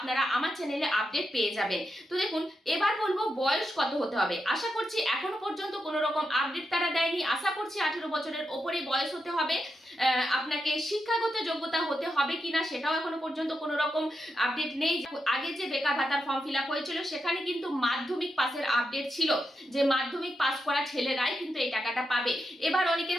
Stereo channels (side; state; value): both; normal; correlation 0.86